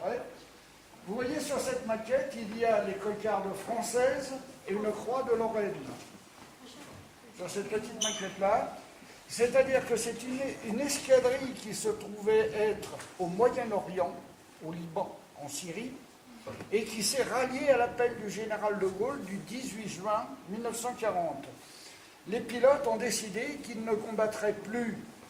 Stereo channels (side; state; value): both; identical; correlation 1.00